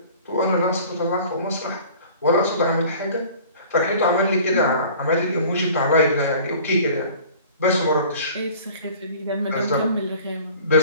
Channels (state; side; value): inverted; both; correlation -0.46